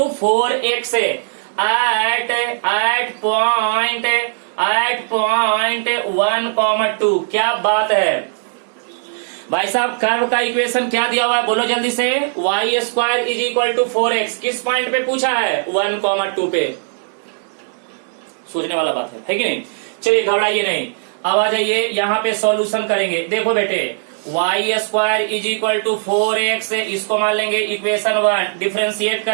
4x at point 1,2। क्या बात है भाई साहब, curve का इक्वेशन क्या दिया हुआ है बोलो जल्दी से। y square is equal to 4x किस पॉइंट पे पूछा है, 1,2 पे। सोचने वाला बात है कि नहीं। चलिए घबराइए नहीं, अब आ जाइए यहाँ पे सॉल्यूशन करेंगे। देखो बेटे y square is equal to 4x, इसको मान लेंगे इक्वेशन 1। डिफ्रेंशिएट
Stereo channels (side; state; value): left; silent; digital silence